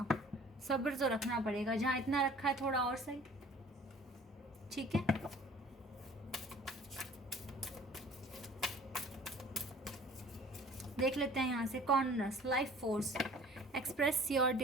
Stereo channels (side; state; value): both; normal; correlation 0.50